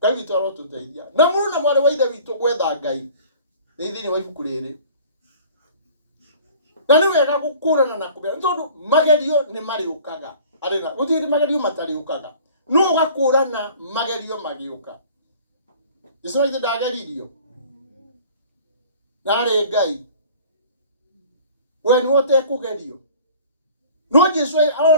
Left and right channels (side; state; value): both; inverted; correlation -0.47